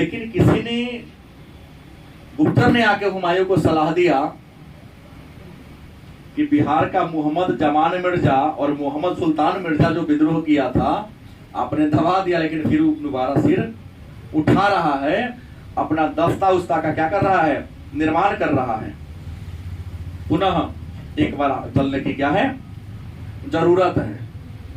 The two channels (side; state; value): both; identical; correlation 1.00